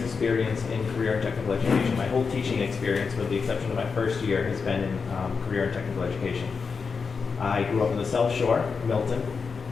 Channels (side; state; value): right; quieter; 5.3 dB